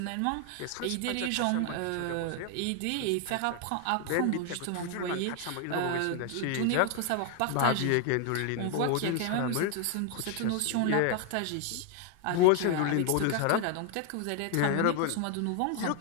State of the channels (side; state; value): both; different; correlation 0.00